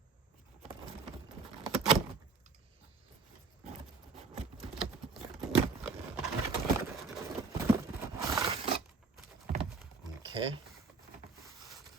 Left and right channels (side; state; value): left; quieter; 4.6 dB